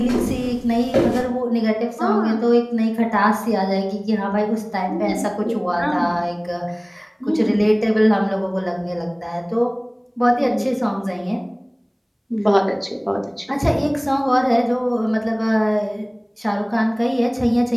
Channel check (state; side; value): identical; both; correlation 1.00